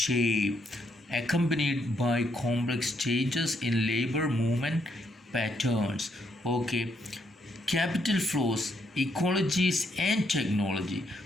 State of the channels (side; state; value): both; normal; correlation 0.75